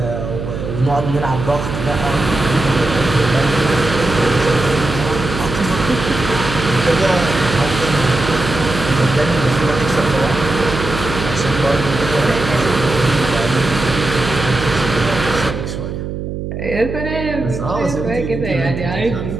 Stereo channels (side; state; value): right; noise; hum, 6 dB below the sound